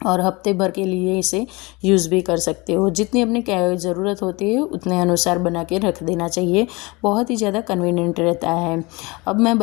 और हफ्ते भर के लिए इसे यूज़ भी कर सकते हो। जितनी अपनी ज़रूरत होती है उतने अनुसार बना के रख देना चाहिए, बहुत ही ज़्यादा कन्वीनियंट रहता है। अब मैं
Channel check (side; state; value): right; quieter; 25.2 dB